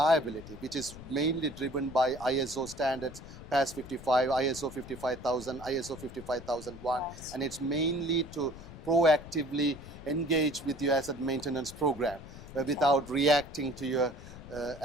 which is mainly driven by ISO standards, PAS 55, ISO 55000, ISO 55001, and it's mainly to proactively engage with your asset maintenance program without reacting to your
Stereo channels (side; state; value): left; noise; rumble, 15 dB below the sound